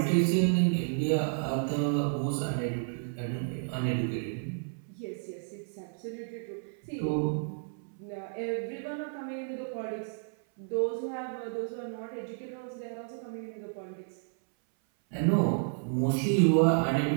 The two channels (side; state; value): left; silent; 57 dB below the other